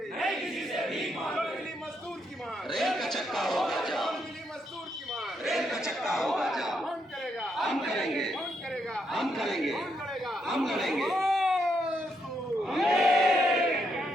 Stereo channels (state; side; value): normal; both; correlation 0.78